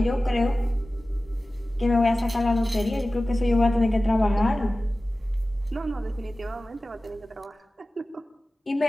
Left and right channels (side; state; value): both; normal; correlation 0.96